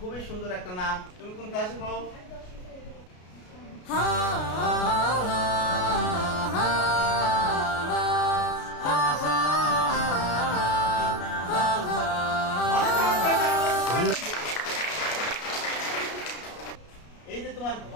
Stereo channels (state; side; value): late; right; 33 ms